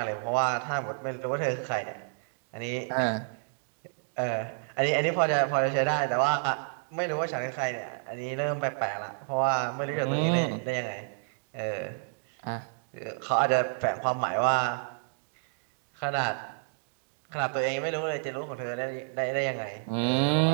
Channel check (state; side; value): silent; left; digital silence